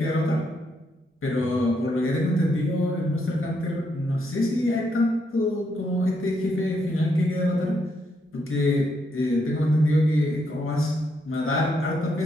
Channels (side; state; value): both; normal; correlation 0.77